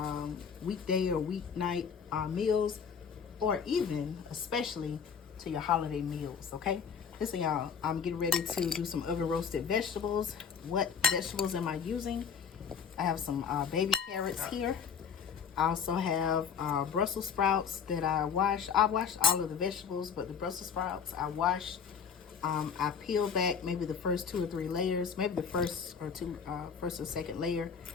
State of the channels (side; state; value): right; quieter; 6.7 dB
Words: weekday or weeknight meals, or even, especially, to your holiday meals, okay? Listen y'all, I'm getting ready to do some oven roasted vegetables. What vegetables am I using? I have some baby carrots here. I also have Brussels sprouts that I washed. I washed all of the vegetables, but the Brussels sprouts I washed. I peeled back maybe the first 2 or 3 layers, maybe the first or second layer,